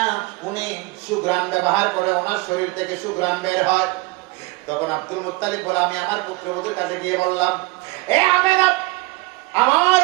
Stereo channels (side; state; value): left; quieter; 24.4 dB